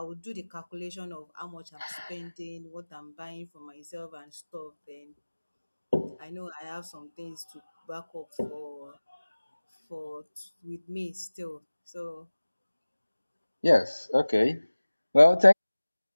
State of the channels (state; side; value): inverted; both; correlation -1.00